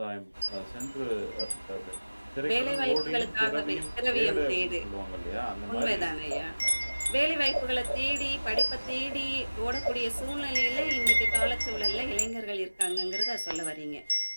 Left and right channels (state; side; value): inverted; both; correlation -1.00